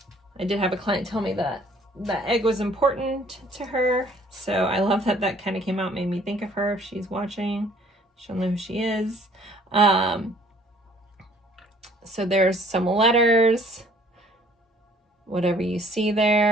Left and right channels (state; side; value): normal; both; correlation 0.58